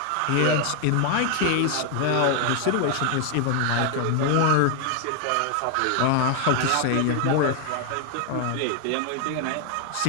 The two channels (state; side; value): different; both; correlation 0.01